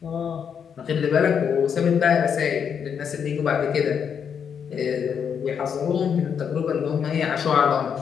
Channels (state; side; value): quieter; right; 7.4 dB